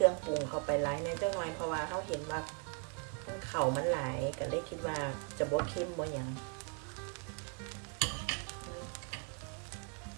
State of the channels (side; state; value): left; quieter; 36.6 dB